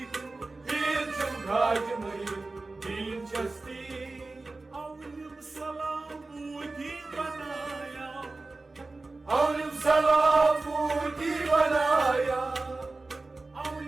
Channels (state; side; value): quieter; left; 3.4 dB